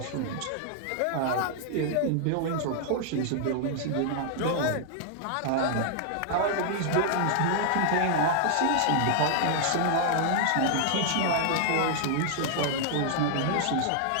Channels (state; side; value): different; both; correlation -0.01